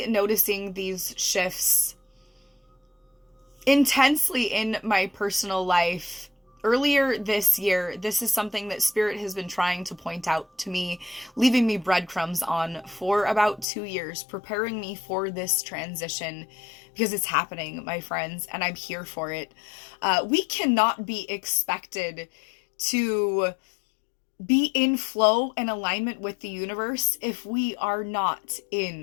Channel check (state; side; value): drops out; right; at 13.7 s